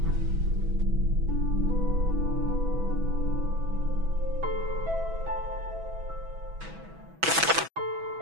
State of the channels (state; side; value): late; left; 6.1 ms